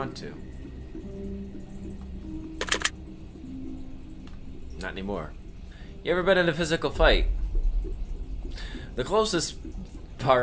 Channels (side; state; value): both; identical; correlation 1.00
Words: to. Not anymore. You ever been in a physical fight? The closest